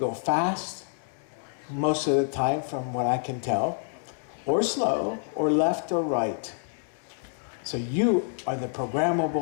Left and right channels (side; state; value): right; silent; 60 dB below the other